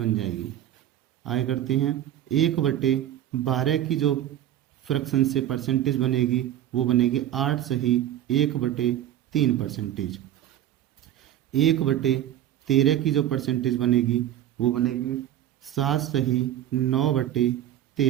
जाएगी। आगे करते हैं। 1/12 की जो फ्रैक्शन से परसेंटेज बनेगी वो बनेगी 8 सही 1/3 परसेंटेज। 1/13 की जो परसेंटेज बनेगी वो बनेगी 7 सही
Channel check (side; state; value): left; quieter; 11.8 dB